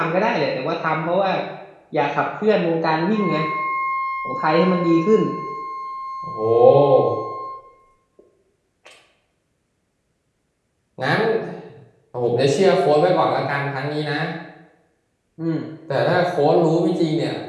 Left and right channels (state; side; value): identical; both; correlation 1.00